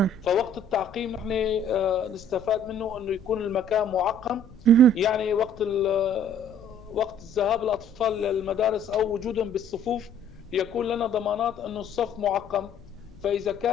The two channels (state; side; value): noise; left; rumble, 21 dB below the sound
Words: فوقت التعقيم نحن نستفاد منه أنه يكون المكان معقم، مهم. يعني وقت الذهاب الأطفال للمدارس أو وجودهم بالصفوف يكون لنا ضمانات أن الصف معقم، فإذا